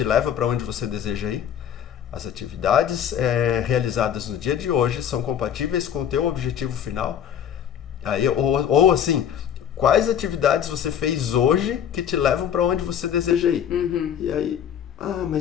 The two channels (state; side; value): quieter; right; 9.2 dB